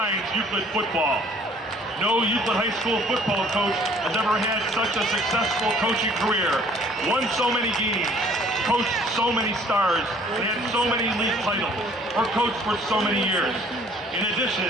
Euclid football. No Euclid High School football coach has ever had such a successful coaching career, won so many games, coached so many stars, and had so many league titles, or coached for so many years. In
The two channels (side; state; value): both; normal; correlation 0.56